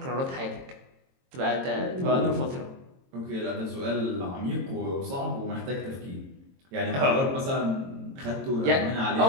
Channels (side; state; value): left; late; 22 ms